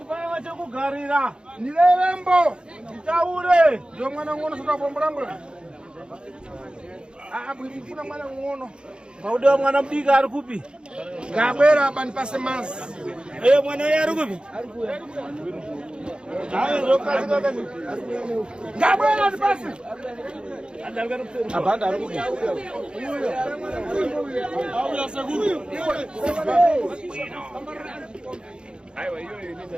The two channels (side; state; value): left; late; 0.052 ms